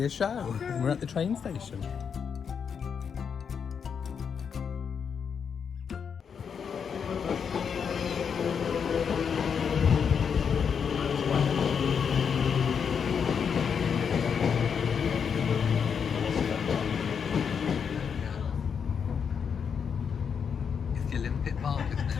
a show. Okay. We're at the train station. It's the Olympic Park, isn't it?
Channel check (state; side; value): quieter; right; 6.8 dB